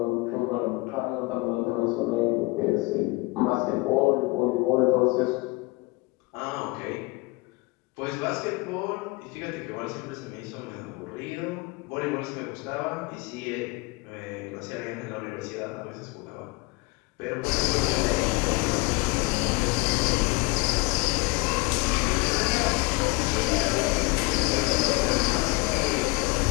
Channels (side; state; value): right; quieter; 25.3 dB